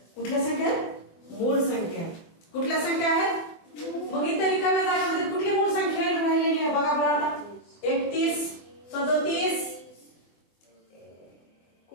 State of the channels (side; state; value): right; late; 24 ms